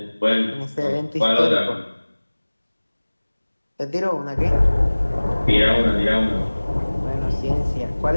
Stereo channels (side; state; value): both; inverted; correlation -1.00